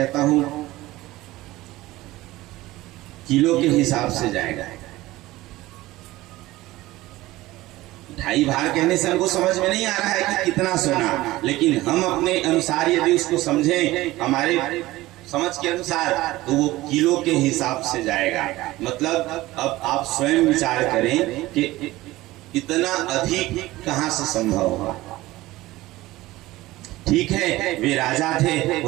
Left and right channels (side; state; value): left; quieter; 17.9 dB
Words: हूं किलो के हिसाब से जाएगा। 2.5 भार कहने से हमको समझ में नहीं आ रहा है कि कितना सोना, लेकिन हम अपने अनुसार यदि उसको समझें हमारे समझ के अनुसार तो वो किलो के हिसाब से जाएगा। मतलब अब आप स्वयं विचार करें कि इतना अधिक कहां से संभव होगा। ठीक है वे राजा थे,